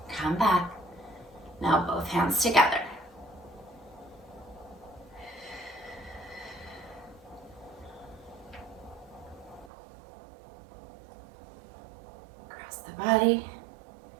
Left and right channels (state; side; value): drops out; left; at 9.7 s